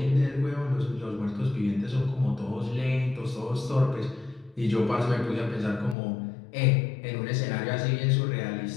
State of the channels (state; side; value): drops out; right; at 6.0 s